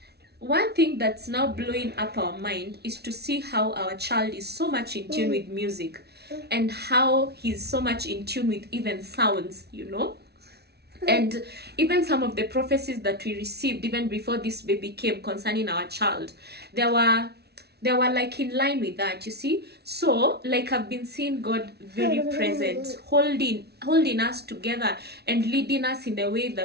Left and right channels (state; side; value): late; left; 0.48 ms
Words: one thing that's now blowing up our mind is to see how our child is so much in tune with music, and how he's so much in tune with even sounds. And even some of the prophecies that we received even before this baby came concerning our child, there were like in line with that, you see. So like, I've been seeing God very present, holding us together and leading us in the way